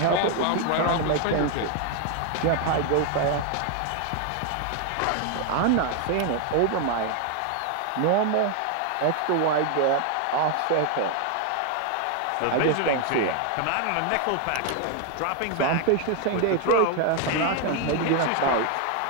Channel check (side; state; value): both; different; correlation 0.01